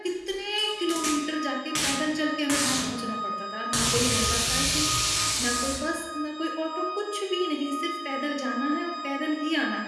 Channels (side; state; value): both; identical; correlation 1.00